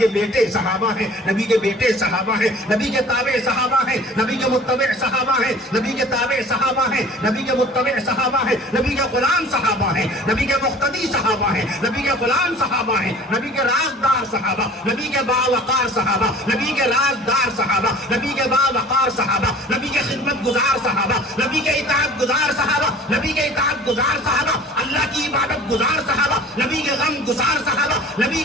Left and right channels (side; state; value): both; normal; correlation 0.46